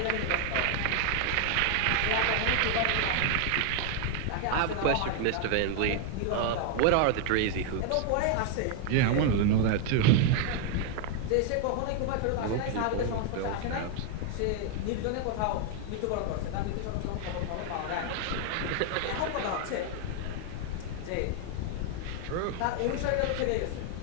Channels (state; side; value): different; both; correlation 0.00